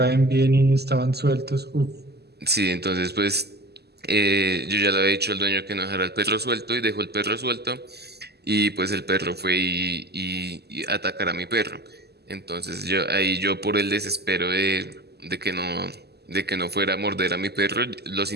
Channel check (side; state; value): left; late; 0.47 ms